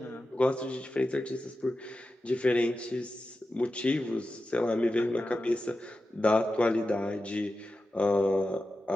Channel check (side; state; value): both; normal; correlation 0.92